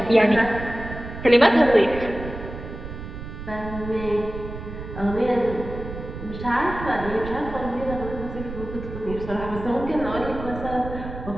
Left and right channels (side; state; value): right; noise; rumble, 10 dB below the sound